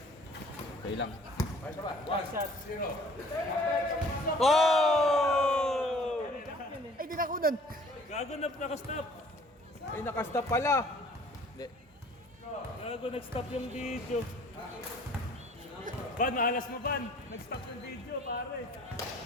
Kaya lang. Oh! Ay, di na kunan. Gago na nakastop. Ay, nakastop pala. Hindi. Gago nag-stop yung video. Ban, mahalas mo ban. Nag-stop yung video, pare.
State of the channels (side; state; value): both; normal; correlation 0.53